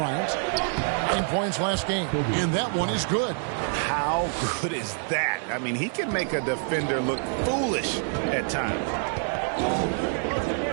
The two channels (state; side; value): silent; left; 60 dB below the other